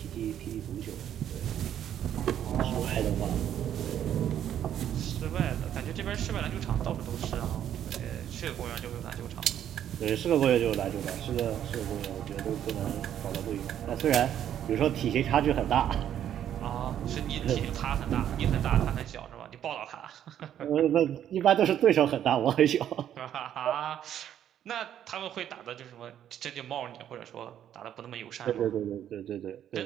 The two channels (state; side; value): quieter; left; 10.3 dB